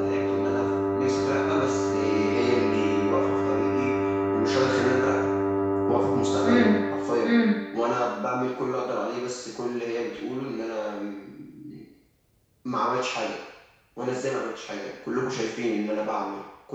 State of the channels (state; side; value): identical; both; correlation 1.00